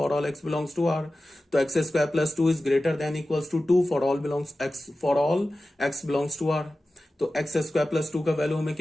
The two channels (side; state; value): both; normal; correlation 0.95